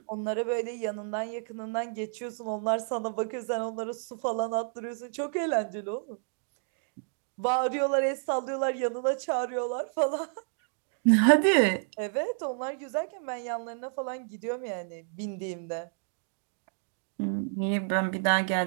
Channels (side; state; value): left; silent; digital silence